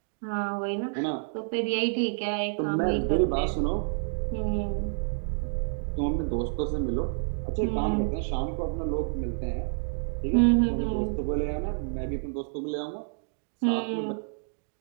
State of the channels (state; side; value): silent; left; digital silence